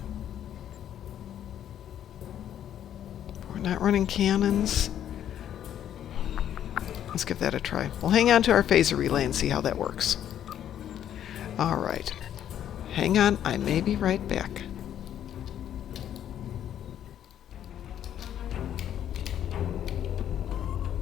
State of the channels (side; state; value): right; quieter; 10.4 dB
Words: We're not running cannons. Let's give that a try. We'll hang on to our phaser relay and see how that works. Alright. Hang on, I may be right back.